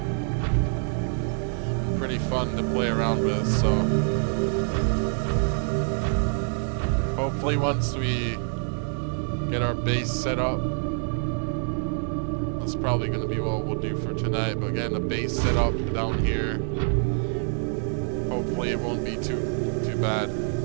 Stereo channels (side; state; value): left; silent; 56 dB below the other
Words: fun to play around with, so hopefully once we get our base set up, that's probably going to be what we'll do for tonight, but getting a base set up down here, hopefully it won't be too bad.